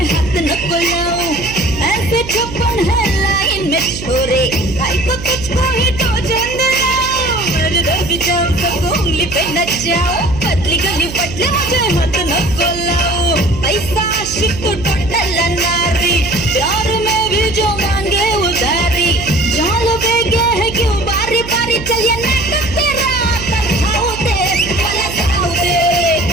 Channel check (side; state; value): right; noise; hum, 11 dB below the sound